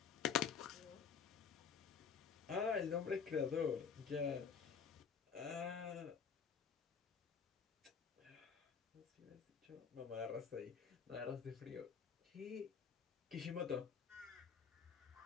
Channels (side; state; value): right; quieter; 6.5 dB